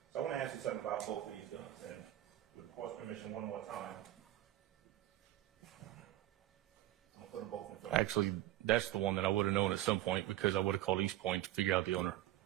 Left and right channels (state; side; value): quieter; left; 14.3 dB